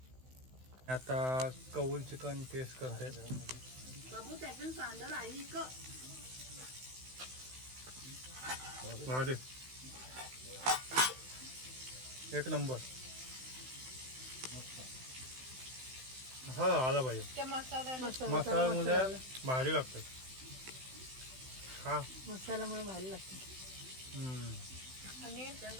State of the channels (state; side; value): late; left; 16 ms